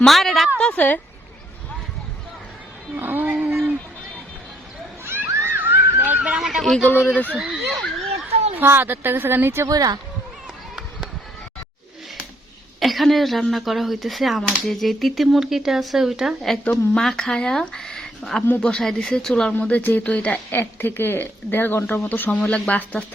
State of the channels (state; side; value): normal; both; correlation 0.68